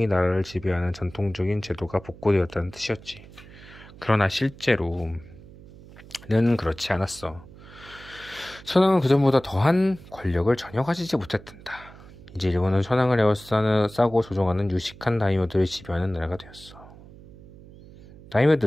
나라를 지배하는 전통적인 제도가 복고되었다는 뜻이었지. 그러나 실제로는 그렇지 않았어. 천황은 그전보다 더한 권력을 전혀 가지지 못했단다. 이제 일본은 천황을 에워싸고 조종하는 유식한 다이묘들을 지배하는 나라가 되었어.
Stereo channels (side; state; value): right; noise; hum, 20 dB below the sound